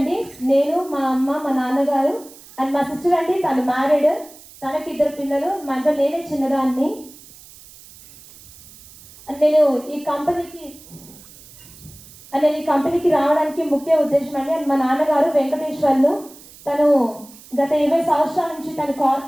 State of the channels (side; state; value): right; noise; hiss, 21 dB below the sound